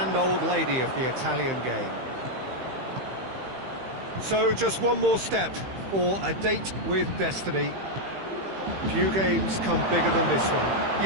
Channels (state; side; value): late; left; 15 ms